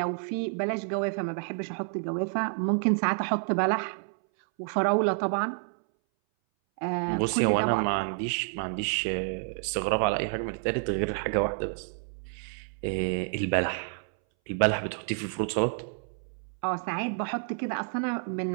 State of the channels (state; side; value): silent; left; 58 dB below the other